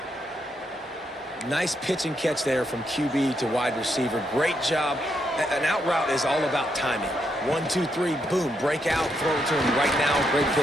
Nice pitch and catch there from QB to wide receiver. Great job. An out route is all about timing. 1, 2, 3, boom, break out, throw it to him right now. Great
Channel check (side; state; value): both; normal; correlation 0.79